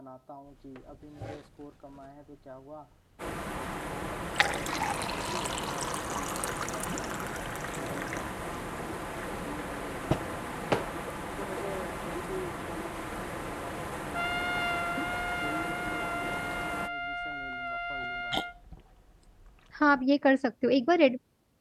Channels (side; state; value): both; identical; correlation 1.00